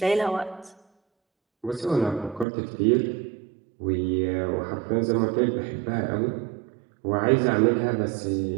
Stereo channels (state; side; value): drops out; left; at 2.5 s